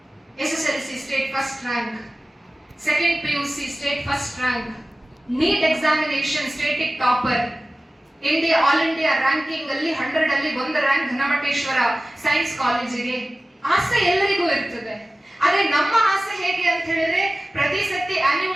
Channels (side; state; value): both; normal; correlation 0.96